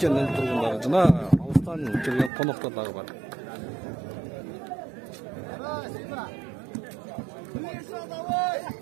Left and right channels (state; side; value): drops out; left; at 2.3 s